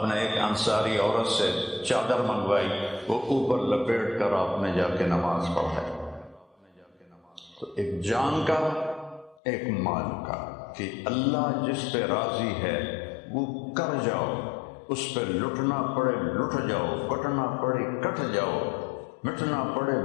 نے ایک انصاری عورت سے چادر منگوائی، وہ اوپر لپیٹ کر آپ نے جا کے نماز پڑھائی۔ تو ایک جان کا ایک مال کا، کہ اللہ جس پہ راضی ہے وہ کر جاؤ، اس پہ لٹنا پڑے لٹ جاؤ، کٹنا پڑے کٹ جاؤ، مٹنا پڑے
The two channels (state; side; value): drops out; right; at 9.4 s